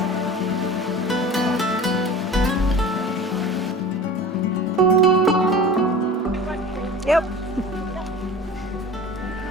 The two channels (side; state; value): both; normal; correlation 0.37